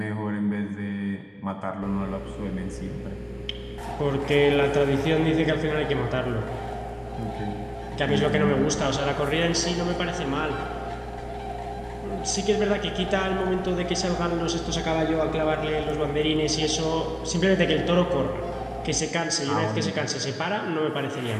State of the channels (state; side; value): identical; both; correlation 1.00